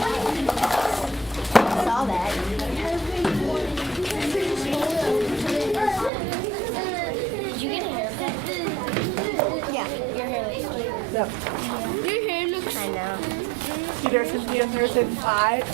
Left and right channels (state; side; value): drops out; left; at 6.1 s